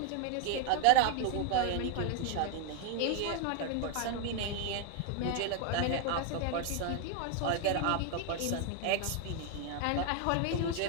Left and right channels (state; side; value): different; both; correlation 0.01